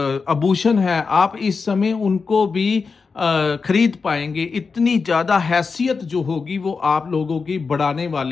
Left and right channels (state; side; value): quieter; right; 4.9 dB